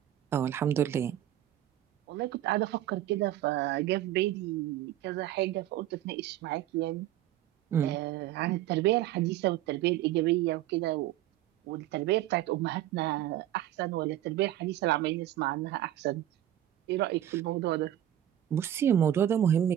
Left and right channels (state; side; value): quieter; left; 12.5 dB